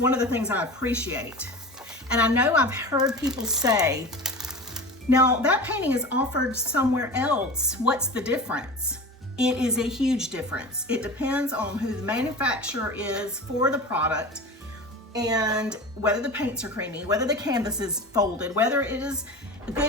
of the things I appreciate. And I know I've heard people say, now that painting is offered somewhere else, what's the difference? It is a huge difference. It depends on who the manufacturer is for the product and whether the paints are creamy, whether the canvas is folded, whether it is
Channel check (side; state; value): both; normal; correlation 0.32